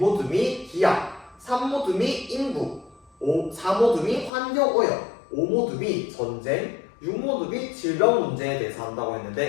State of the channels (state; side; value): drops out; right; at 4.3 s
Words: 기하, 3모듬이 인구, 4모듬이 환경 오염, 5모듬이 전쟁, 6모듬이 질병 문제에 대해서 한다고